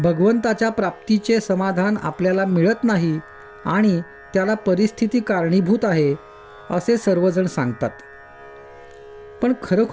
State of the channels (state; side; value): identical; both; correlation 1.00